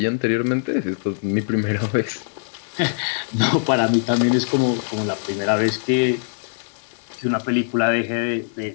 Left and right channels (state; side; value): silent; right; digital silence